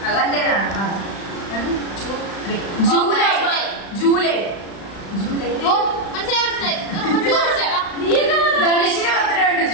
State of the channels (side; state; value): right; late; 35 ms